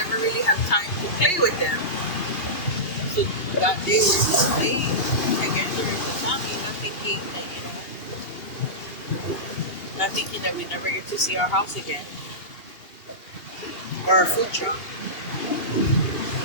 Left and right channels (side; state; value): right; late; 2.8 ms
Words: really have time to play with them. So that day we were just playing together as a family, not thinking that, not thinking that we never get to see our house again or our food truck.